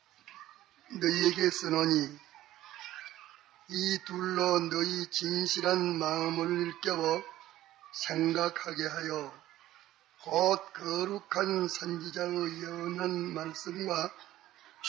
너희에게 쓰노니 이 둘로 너희 진실한 마음을 일깨워 생각하게 하여 곧 거룩한 선지자의 예언한 말씀과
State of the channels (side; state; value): left; quieter; 14.4 dB